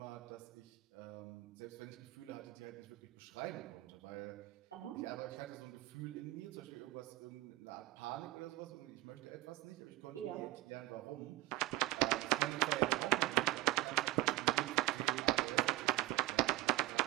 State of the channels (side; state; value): left; quieter; 20.9 dB